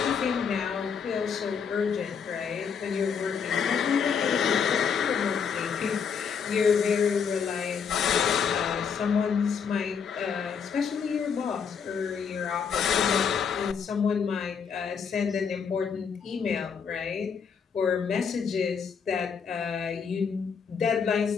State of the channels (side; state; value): right; quieter; 6.5 dB